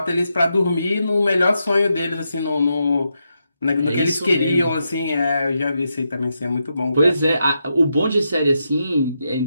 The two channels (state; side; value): inverted; both; correlation -0.84